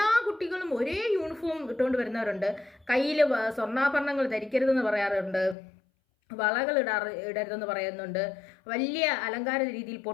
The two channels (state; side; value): drops out; right; at 5.6 s